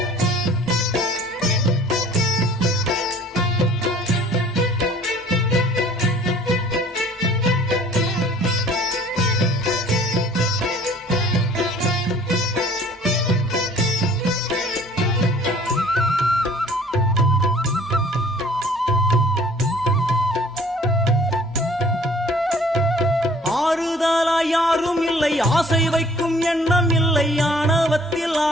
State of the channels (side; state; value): both; normal; correlation 0.53